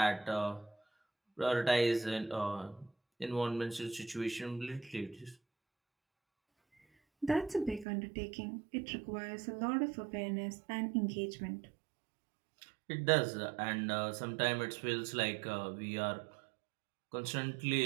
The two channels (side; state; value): left; drops out; at 7.9 s